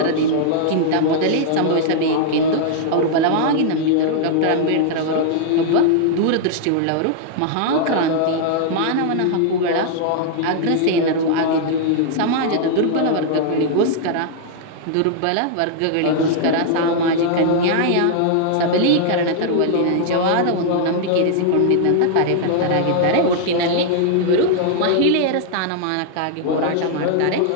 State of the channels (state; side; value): different; both; correlation -0.01